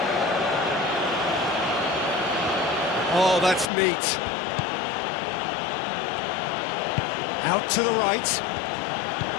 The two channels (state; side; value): drops out; right; at 3.7 s